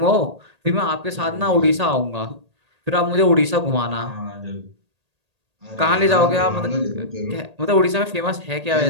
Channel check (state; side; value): late; left; 1.8 ms